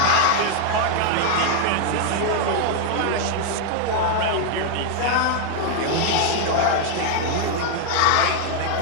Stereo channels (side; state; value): both; different; correlation 0.00